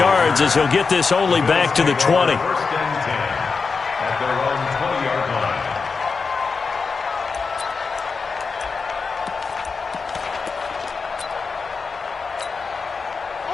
as he'll get this only back to the 20.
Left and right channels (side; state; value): right; quieter; 4.8 dB